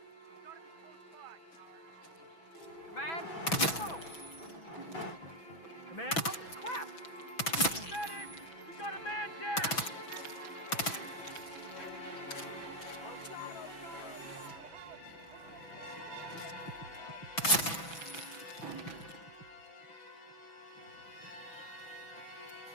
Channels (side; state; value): right; late; 6.0 ms